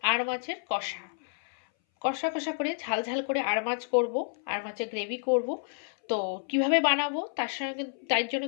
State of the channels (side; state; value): right; silent; 58 dB below the other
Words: আর মাছের কষা কষা কষা করে ঝাল ঝাল করে আর মাছ করবো, আর মাছের গ্রেভি করব। তো কিভাবে বানাবো তার জন্য